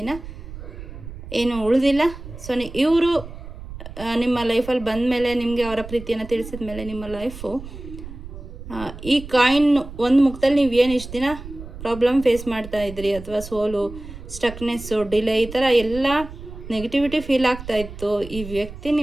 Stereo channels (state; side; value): noise; right; rumble, 13 dB below the sound